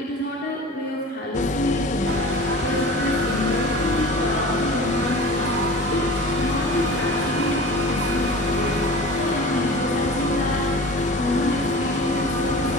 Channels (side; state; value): both; normal; correlation 0.38